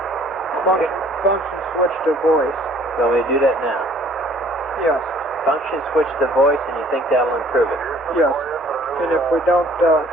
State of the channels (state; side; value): normal; both; correlation 0.57